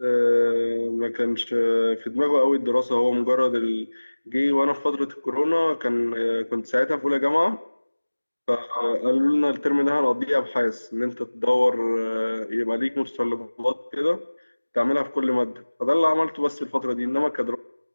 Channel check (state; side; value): inverted; both; correlation -1.00